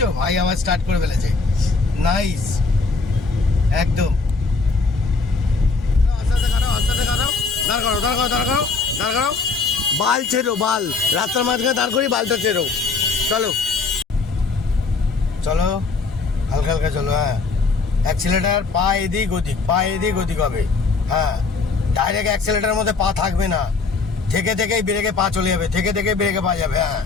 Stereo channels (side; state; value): right; quieter; 4.3 dB